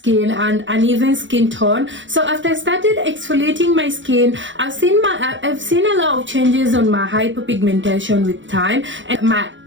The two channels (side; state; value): left; late; 0.55 ms